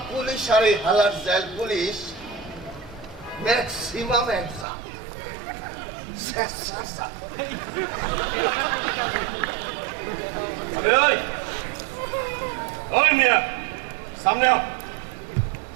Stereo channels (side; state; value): left; drops out; at 4.7 s